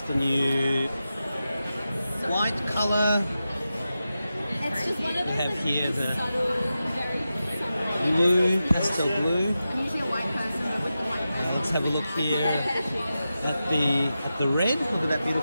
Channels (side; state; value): both; inverted; correlation -0.91